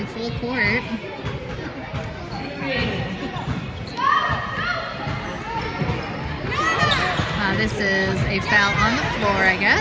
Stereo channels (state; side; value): identical; both; correlation 1.00